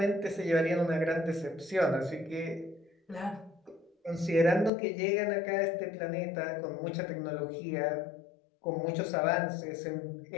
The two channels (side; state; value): right; drops out; at 4.7 s